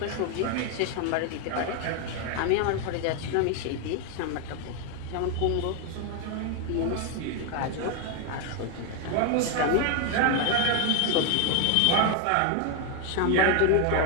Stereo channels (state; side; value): different; both; correlation 0.01